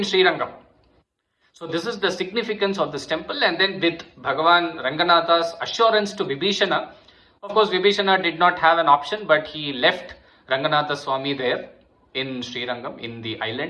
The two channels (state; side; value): identical; both; correlation 1.00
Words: Srirangam. So this is the significance of this temple. And then with Bhagavan Ranganatha's assurance to Vibhishana, of course Vibhishana did not have an option, but he left Ranganatha Swami there in Srirangam, in the